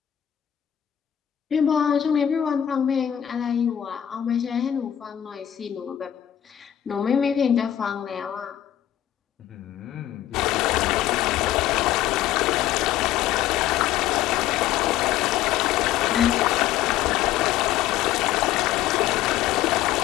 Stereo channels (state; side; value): quieter; right; 11.5 dB